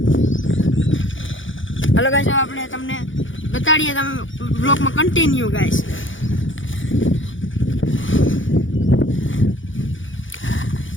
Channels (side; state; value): right; late; 0.56 ms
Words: હાલો ગાઈસ, આપણે તમને બતાડીએ, તમે બ્લોગમાં કન્ટિન્યુ ગાઈસ.